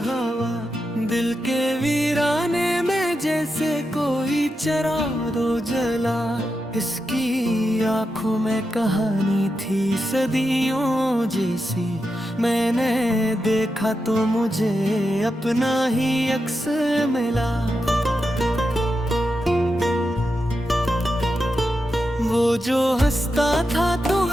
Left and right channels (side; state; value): both; normal; correlation 0.88